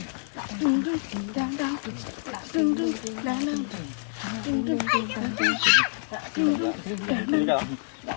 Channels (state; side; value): silent; right; digital silence